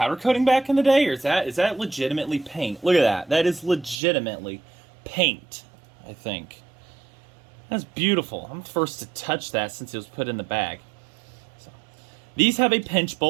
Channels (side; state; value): left; drops out; at 4.0 s